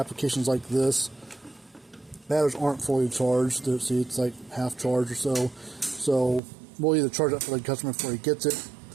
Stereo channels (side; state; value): left; drops out; at 6.4 s